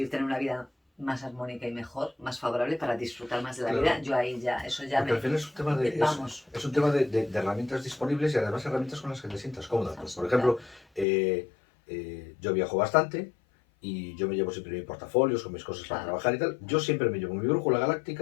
tener una vida más armónica y mejor, más favorable, para disfrutar más de la vida, claro. yo ahí ya, eso ya Porque al me... final es un tema Vamos. es un tema de herramientas disponibles y además herramientas con las que te sientas cómoda. Pues, por ejemplo, Claro, yo viajo bastante y yo me llevo siempre mis portafolios con mis cosas para claro, trabajar y tal. Yo siempre me llevo mi brújula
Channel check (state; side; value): drops out; right; at 11.1 s